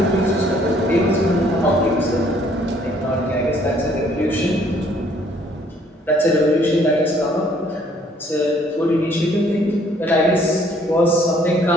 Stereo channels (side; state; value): both; normal; correlation 0.62